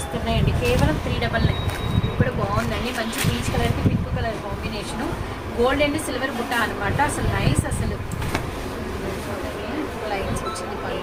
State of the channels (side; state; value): both; identical; correlation 1.00